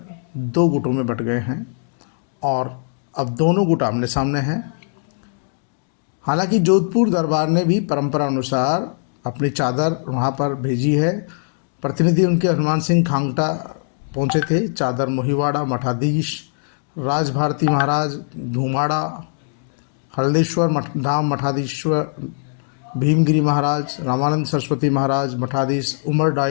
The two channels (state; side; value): silent; right; digital silence